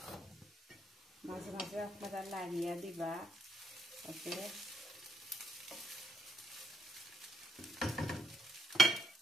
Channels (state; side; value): normal; both; correlation 0.74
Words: মাঝে মাঝে আপনারা লাড়িয়া দিবা ওকে